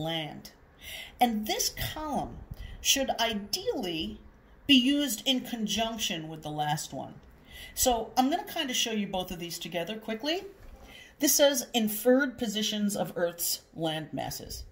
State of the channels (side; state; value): both; identical; correlation 1.00